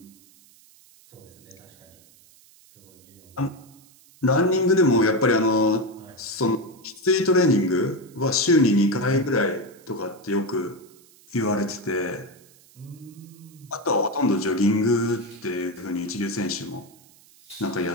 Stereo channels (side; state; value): right; noise; hiss, 27 dB below the sound